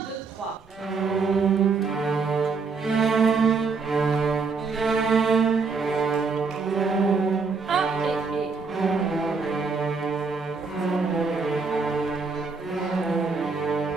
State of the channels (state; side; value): quieter; left; 4.7 dB